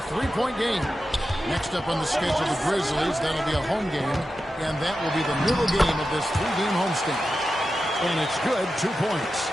game. Next up on the schedule, the Grizzlies. That'll be a home game. And that will be the middle game of this 3-game homestand. And it's good, 2 points.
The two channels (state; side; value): normal; both; correlation 0.91